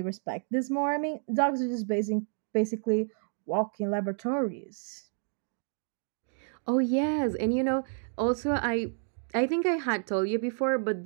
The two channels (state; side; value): silent; left; 58 dB below the other